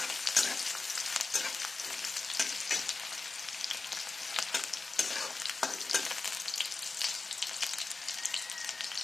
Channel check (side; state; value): right; quieter; 3.7 dB